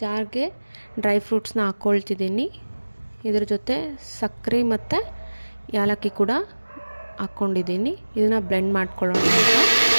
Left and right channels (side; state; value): both; inverted; correlation -1.00